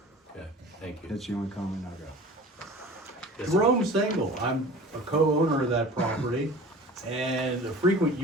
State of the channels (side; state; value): both; normal; correlation 0.41